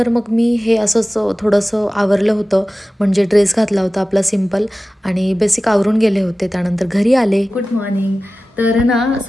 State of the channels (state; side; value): normal; both; correlation 0.96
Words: मग मी हे असंच थोडंसं आवरलं होतं, म्हणजे ड्रेस घातला होता आपला सिम्पल आणि बेसिक आवरून गेले होते. त्यानंतर घरी आले. Good morning. तर ना